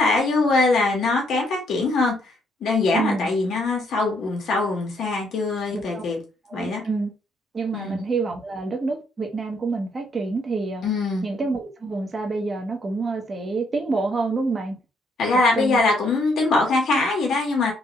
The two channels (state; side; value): normal; both; correlation 0.71